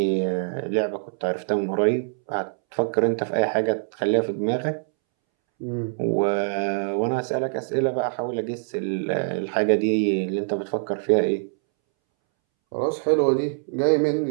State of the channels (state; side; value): silent; left; 62 dB below the other